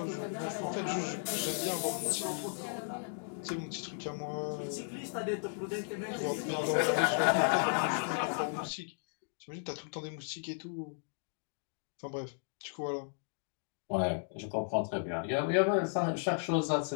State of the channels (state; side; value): silent; right; digital silence